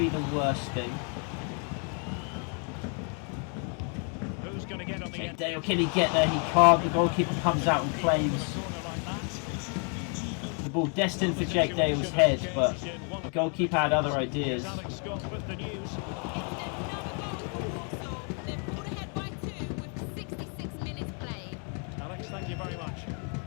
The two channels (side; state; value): right; quieter; 39.7 dB